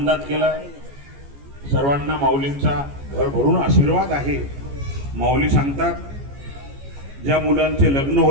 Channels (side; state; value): left; late; 14 ms